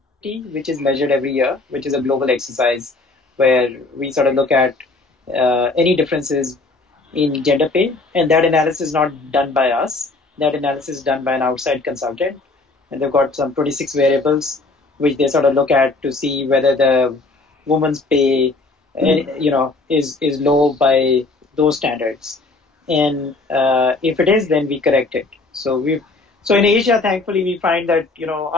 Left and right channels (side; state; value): right; quieter; 3.4 dB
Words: which is measured every year, which is a global exercise where we sort of look at any differences in gender pay, and that analysis is not done by us. That analysis is done by an outside consultant. And they've got some 26 variables which they sort of look at to see whether the woman's pay, is low by those standards. And if it is, then we correct it. So in Asia, thankfully, we find that